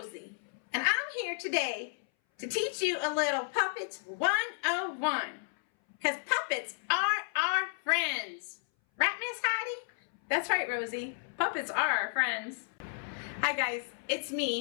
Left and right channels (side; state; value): right; silent; 56 dB below the other